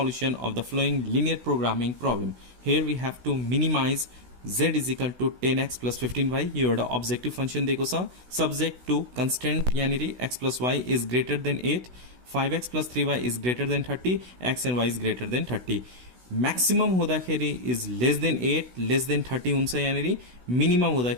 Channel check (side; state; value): left; late; 16 ms